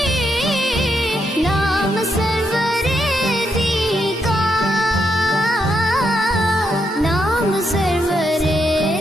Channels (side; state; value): both; normal; correlation 0.80